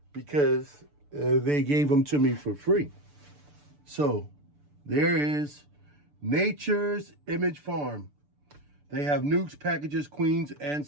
because they gave them to me for free. So there is Nature's Image Farm. They have nukes, packages, queens, and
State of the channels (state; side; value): late; left; 6.8 ms